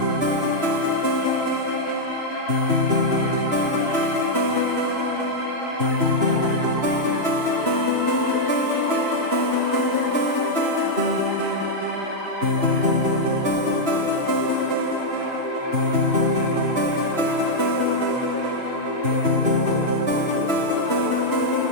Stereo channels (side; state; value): left; late; 2.9 ms